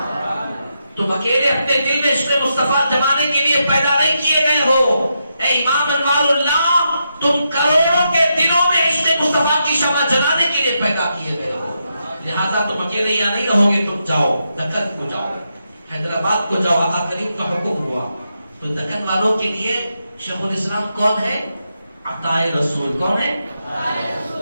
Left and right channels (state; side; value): inverted; both; correlation -0.84